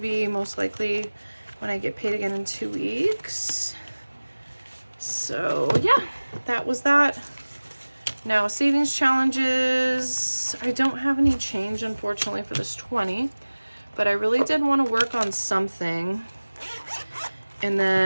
most likely when I get paid again in 2 weeks. So yeah, that was that. Now savings challenges, I don't have any change unfortunately for this 20, but I really did want to work on something. And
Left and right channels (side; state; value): both; inverted; correlation -1.00